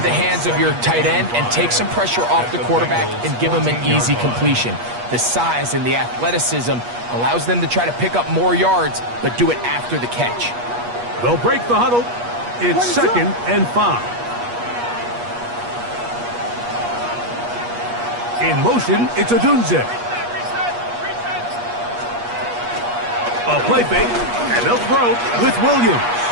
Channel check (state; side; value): late; left; 8.4 ms